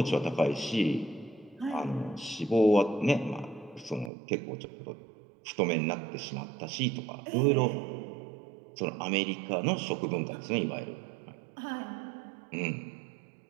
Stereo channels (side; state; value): left; drops out; at 4.1 s